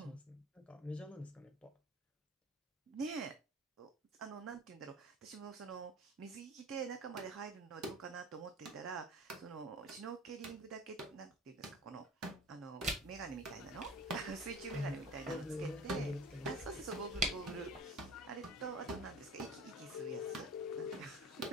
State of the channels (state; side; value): normal; both; correlation 0.40